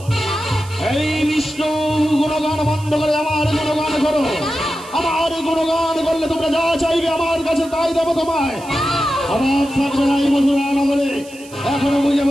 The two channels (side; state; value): right; noise; hiss, 20 dB below the sound